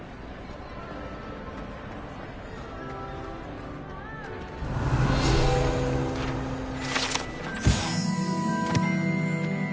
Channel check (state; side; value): identical; both; correlation 1.00